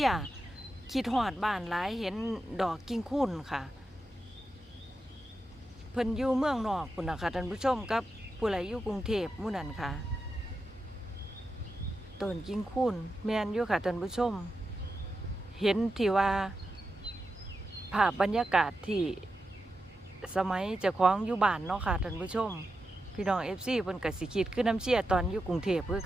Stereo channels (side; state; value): both; normal; correlation 0.89